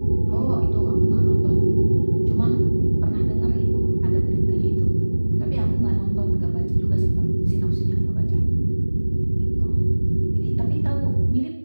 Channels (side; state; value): both; inverted; correlation -1.00